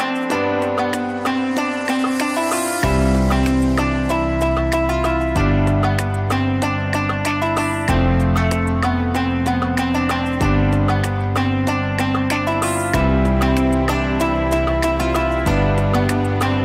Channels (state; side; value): identical; both; correlation 1.00